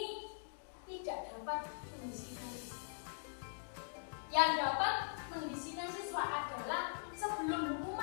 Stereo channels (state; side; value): silent; right; digital silence